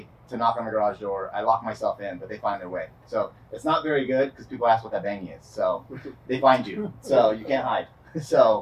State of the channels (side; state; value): both; identical; correlation 1.00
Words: to knock on the garage door. I lock myself in, but they find their way. So it's not very good because people ask what that banging is. So they find you. So you can't hide.